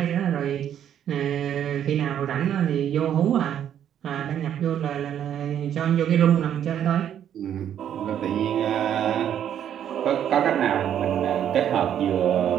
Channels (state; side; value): quieter; left; 9.8 dB